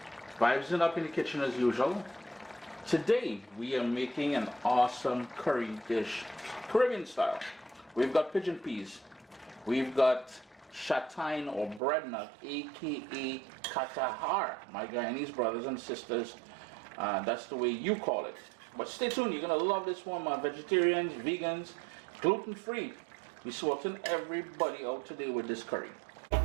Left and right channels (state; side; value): drops out; left; at 11.8 s